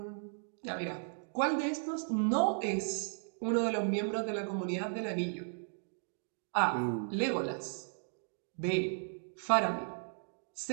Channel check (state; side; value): silent; left; digital silence